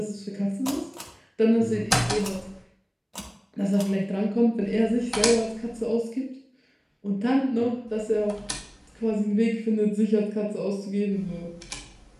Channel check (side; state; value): both; identical; correlation 1.00